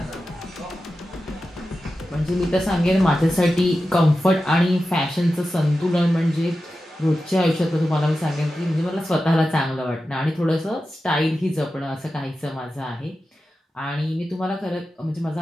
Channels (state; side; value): normal; both; correlation 0.92